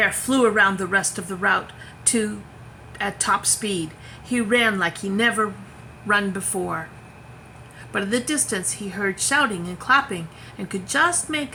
flew around the rest of the route at top speed. He ran like he never run before. But in the distance he heard shouting and clapping and could just make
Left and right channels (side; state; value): both; identical; correlation 1.00